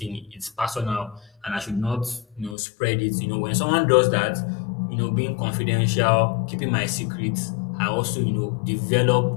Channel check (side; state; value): right; drops out; at 2.6 s